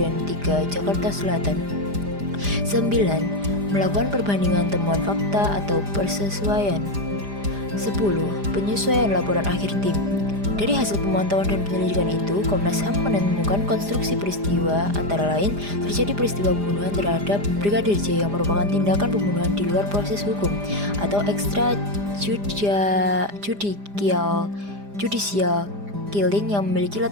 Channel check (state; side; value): late; left; 4.9 ms